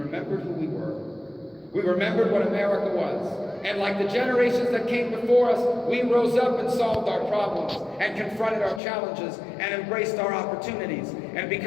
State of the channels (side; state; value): right; drops out; at 8.8 s